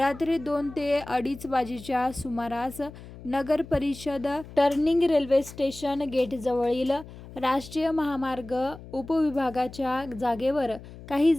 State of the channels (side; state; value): left; noise; hum, 16 dB below the sound